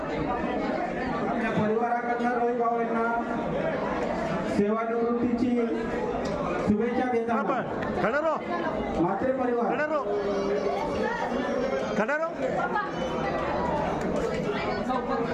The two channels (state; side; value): identical; both; correlation 1.00